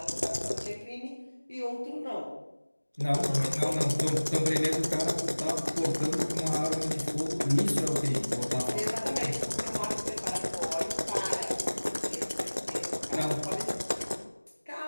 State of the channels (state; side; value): inverted; both; correlation -1.00